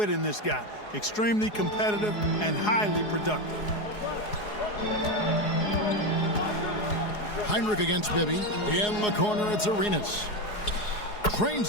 in this guy. Extremely competitive and highly productive. Heinrich against Bibby. In the corner, it's Arenas.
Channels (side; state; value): right; late; 4.8 ms